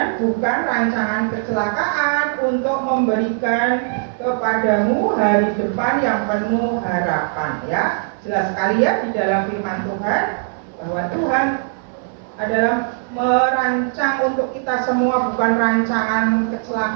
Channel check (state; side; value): silent; left; 66 dB below the other